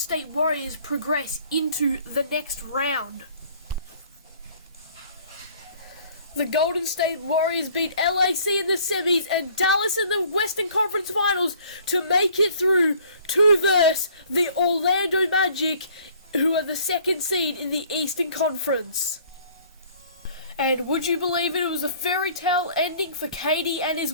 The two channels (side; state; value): both; inverted; correlation -0.55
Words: Warriors progress into the next round. The Golden State Warriors beat LAC in the semis and Dallas in the Western Conference Finals to make it through to verse the Orlando Magic, who are the second seed in the Eastern Conference. And would you believe it, it was a fairy tale ending for KD and his